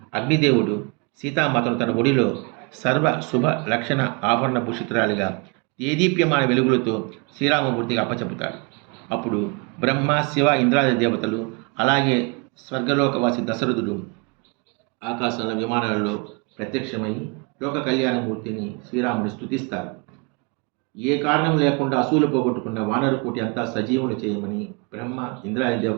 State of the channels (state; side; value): quieter; left; 31.3 dB